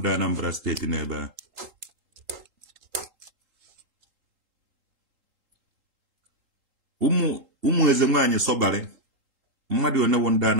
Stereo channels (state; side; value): late; left; 3.8 ms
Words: Anambra steeti n'ebe ahụ ụmụ eze nwaanyị sọbarị mmadụ onewo ndị